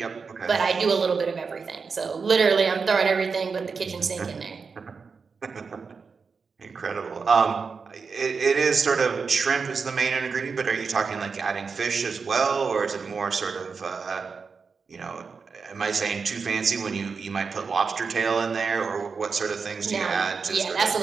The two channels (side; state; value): left; quieter; 5.2 dB